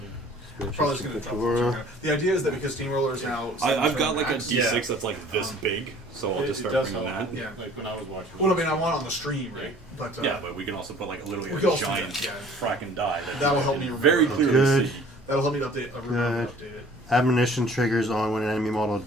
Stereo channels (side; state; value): both; normal; correlation 0.51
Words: Probably just gonna drop the turn. The idea is that because Steamroller is now. I've got like a max- D6 that's like this big, so I'll just It start does bringing help. that. Yeah. Like when I was watching. Well, I mean, I want it on the stream, right? But Yeah, but we can also put like literally We a can also do giant that, yeah. fracking die. That'll help me very remember. clearly Good. see. that'll help me to update. Remember to Good. update it. Admonition triggers on when an enemy model